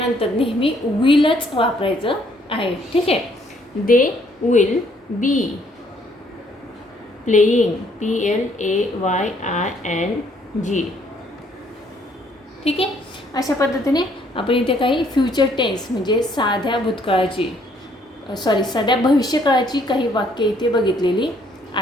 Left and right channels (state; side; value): normal; both; correlation 0.66